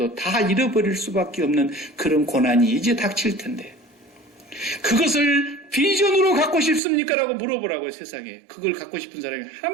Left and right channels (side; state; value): left; drops out; at 6.8 s